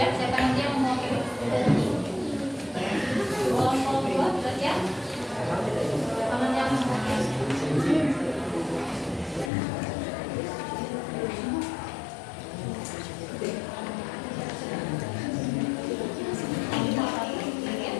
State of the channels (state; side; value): drops out; right; at 9.5 s